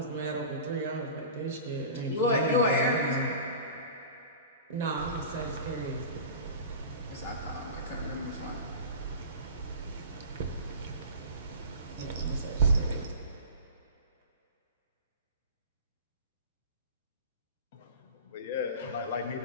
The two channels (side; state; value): both; inverted; correlation -0.34